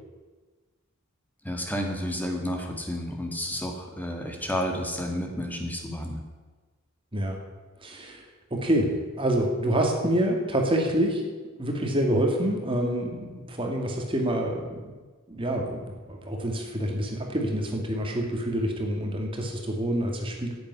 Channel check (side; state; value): both; normal; correlation 0.54